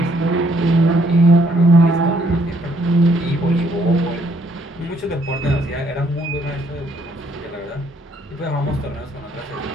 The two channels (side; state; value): both; normal; correlation 0.68